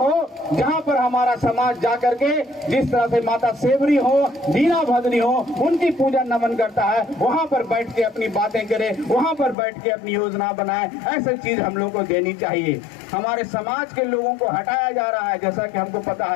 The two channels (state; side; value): drops out; right; at 9.6 s